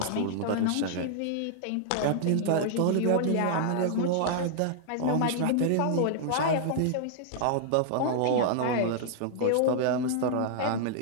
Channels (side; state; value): both; different; correlation -0.01